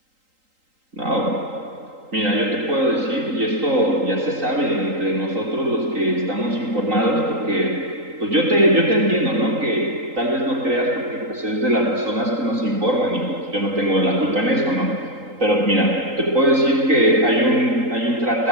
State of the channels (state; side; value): late; left; 3.8 ms